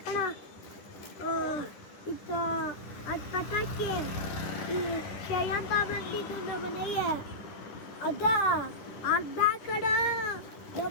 ಇದು ಅದು ಪಟಾಕಿ ಶ್ರೇಯಂತ ಬಂದಿದ್ದು ನಮ್ಮ ಮನೆಗೆ. ಅದ ಅರ್ಧ ಕಡ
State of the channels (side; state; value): right; late; 10 ms